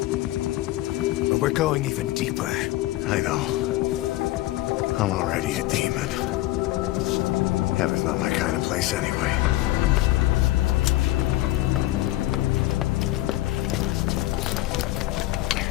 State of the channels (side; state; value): right; quieter; 16.7 dB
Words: But we're going even deeper. I know. I'm already a demon. Heaven's not my kind of place anyway.